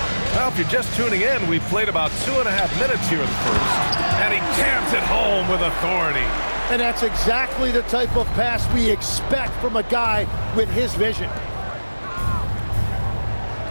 Well, if you're just tuning in, we've played about 2.5 minutes here in the first. And he jams it home with authority. And that's exactly the type of pass we expect from a guy with his vision.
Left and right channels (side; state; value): both; inverted; correlation -1.00